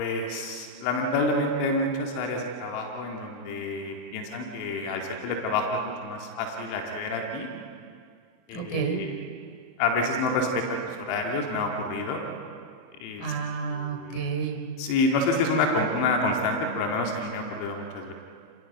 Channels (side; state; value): right; late; 23 ms